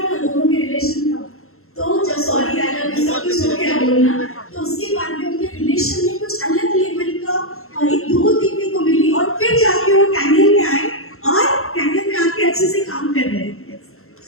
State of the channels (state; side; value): late; right; 0.62 ms